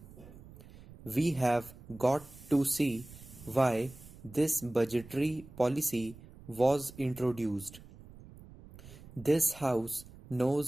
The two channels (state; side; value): noise; right; rumble, 19 dB below the sound